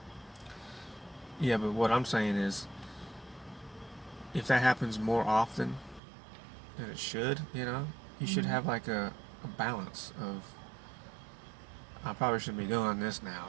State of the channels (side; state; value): left; drops out; at 6.0 s